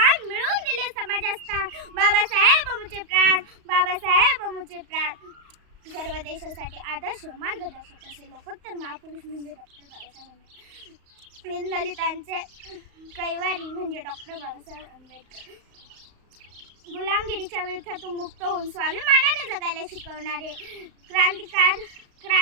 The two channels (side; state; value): left; late; 35 ms